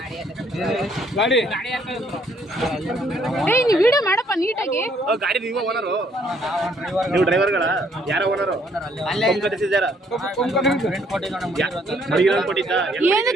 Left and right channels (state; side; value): normal; both; correlation 0.66